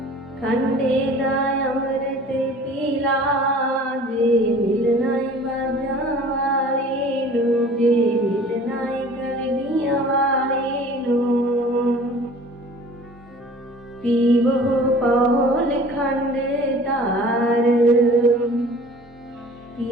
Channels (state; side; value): normal; both; correlation 0.47